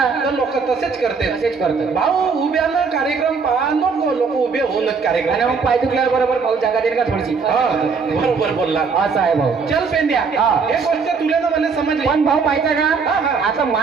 तर लोक तसेच करते. तसेच करतात. भाऊ उभ्यानं कार्यक्रम पहा नको, लोक उभे होऊनच कार्यक्रम. आणि मग पाय दुखल्यावर बरोबर भाऊ जागा देईल का थोडीशी? हा, बरोबर बोलला. असं आहे भाऊ. चल पेंड्या, हा. हे गोष्ट तुला ना मला समजली. पण भाऊ माहितीये हा, का, हा. आता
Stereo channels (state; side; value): quieter; left; 5.2 dB